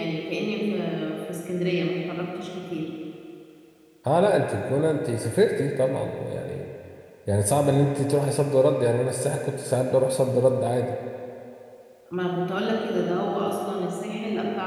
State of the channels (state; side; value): identical; both; correlation 1.00